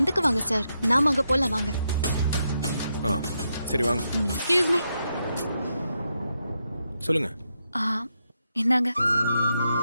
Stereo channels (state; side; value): inverted; both; correlation -0.83